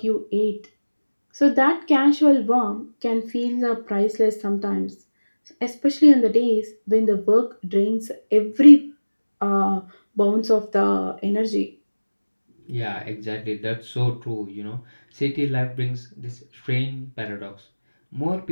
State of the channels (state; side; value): inverted; both; correlation -1.00